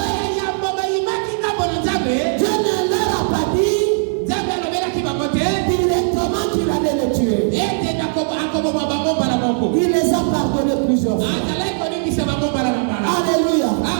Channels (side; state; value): left; silent; digital silence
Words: yambo bayimaki ngambo na nzambe, Dieu ne leur a pas dit nzambe alobelaki bango te directement qu'il allait les